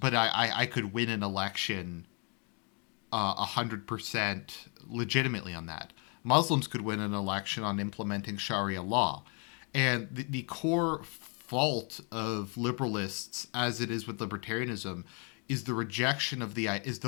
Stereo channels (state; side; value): quieter; right; 36.5 dB